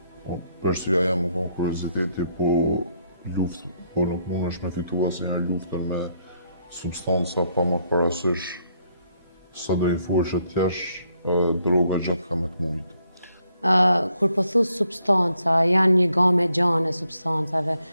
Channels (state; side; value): inverted; both; correlation -0.74